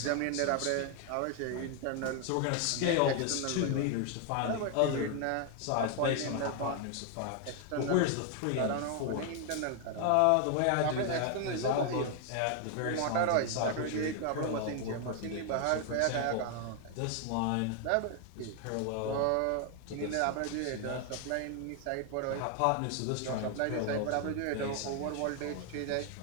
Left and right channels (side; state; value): both; different; correlation 0.00